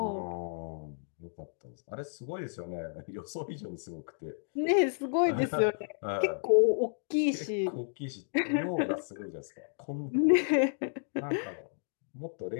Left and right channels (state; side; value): silent; right; digital silence